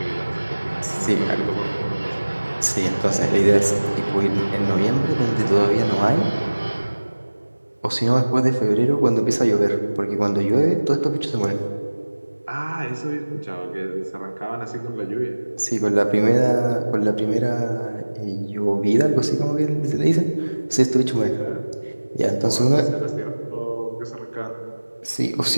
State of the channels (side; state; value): both; inverted; correlation -1.00